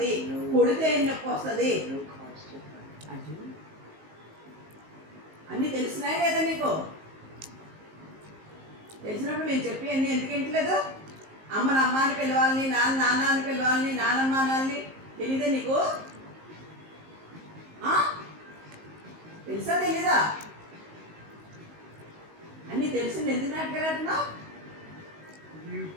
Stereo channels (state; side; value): late; left; 19 ms